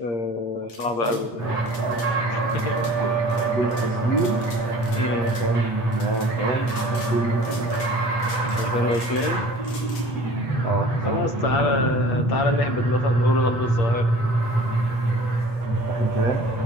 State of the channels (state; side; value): late; right; 8.9 ms